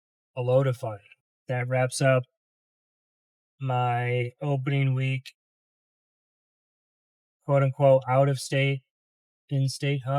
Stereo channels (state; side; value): identical; both; correlation 1.00